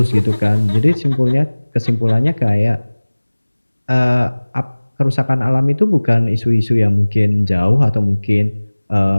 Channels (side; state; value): both; inverted; correlation -1.00